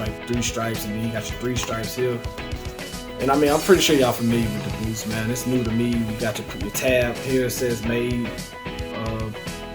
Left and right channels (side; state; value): both; identical; correlation 1.00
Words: 3 stripes, and then you got your 3 stripes here. And I mean, I'm pretty sure y'all familiar with the boost, man. It's new to me. You got your tab here. It says made